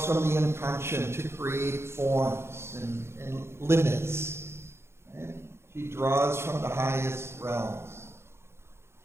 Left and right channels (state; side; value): late; left; 0.12 ms